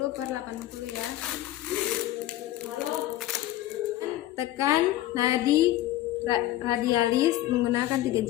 ya. Tekan nadi radialis menggunakan 3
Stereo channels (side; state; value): right; quieter; 14.5 dB